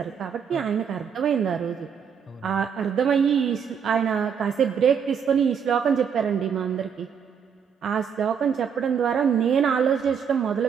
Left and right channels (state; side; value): quieter; left; 7.2 dB